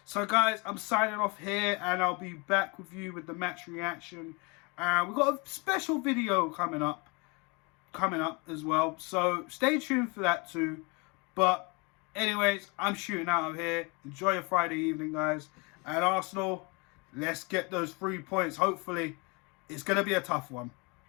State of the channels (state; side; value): quieter; right; 29.5 dB